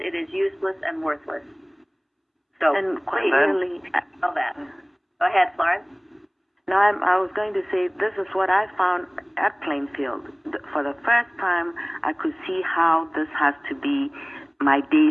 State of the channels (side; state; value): both; identical; correlation 1.00